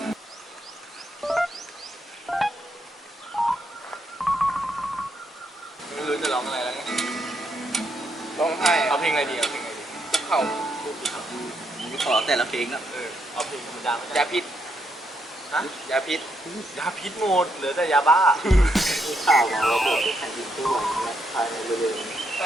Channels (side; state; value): both; normal; correlation 0.78